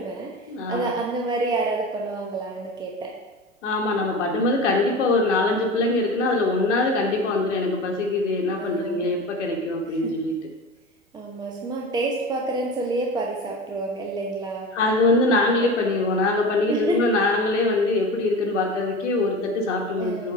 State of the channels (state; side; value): normal; both; correlation 0.31